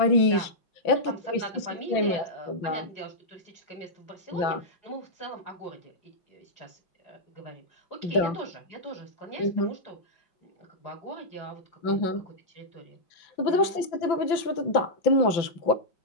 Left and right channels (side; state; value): right; late; 5.9 ms